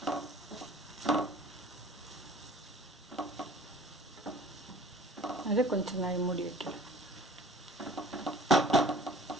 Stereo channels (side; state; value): both; normal; correlation 0.48